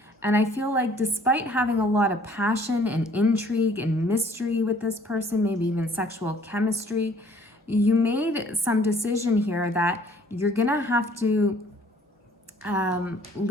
And I feel like despite having a lot of passion and intrigue and mystery with this person, maybe even sexual chemistry, you made some decision here that you're gonna have to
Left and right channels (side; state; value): both; normal; correlation 0.57